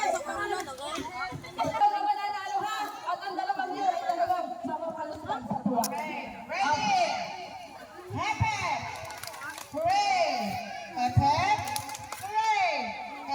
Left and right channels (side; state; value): both; identical; correlation 1.00